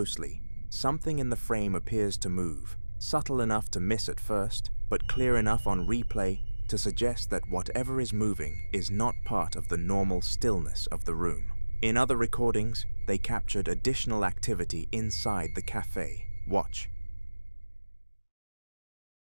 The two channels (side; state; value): both; inverted; correlation -1.00